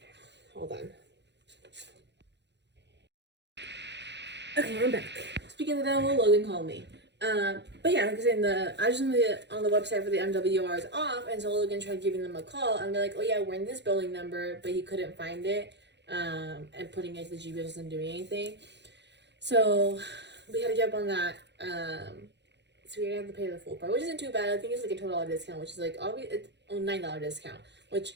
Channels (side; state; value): left; late; 0.51 ms